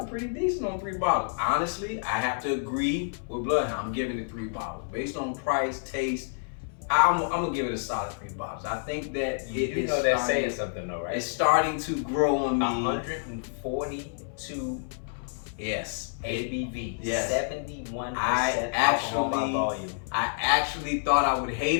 Pretty decent on 3 bottles. Honestly, I have to agree with Bloodhound. I'm giving it 3 bottles. Based on price, taste, I'm gonna give it a solid 3 bottles. I think that you know that's saying something though, right? It's starting to grow on me. 142 yes. ABV, Yes. 71% alcohol by volume. I actually thought I would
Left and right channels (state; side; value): silent; right; 59 dB below the other